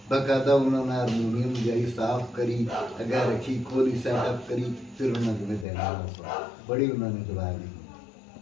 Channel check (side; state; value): right; drops out; at 5.7 s